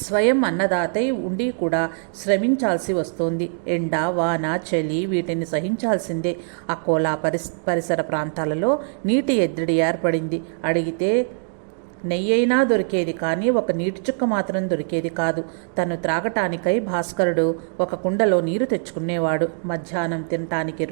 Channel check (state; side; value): silent; left; digital silence